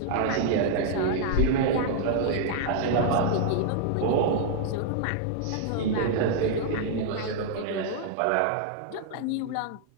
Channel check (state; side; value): different; both; correlation -0.01